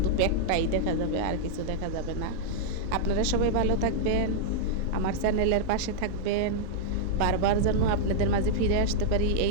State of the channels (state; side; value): different; both; correlation -0.01